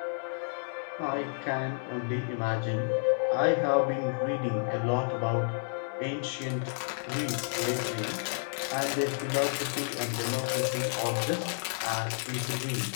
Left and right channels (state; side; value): silent; right; digital silence